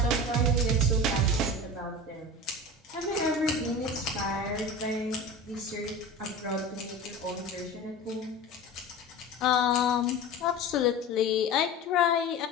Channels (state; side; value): normal; both; correlation 0.32